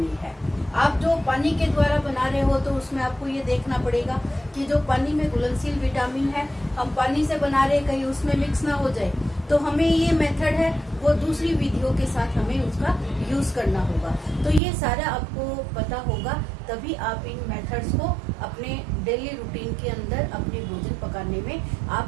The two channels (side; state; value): left; drops out; at 14.6 s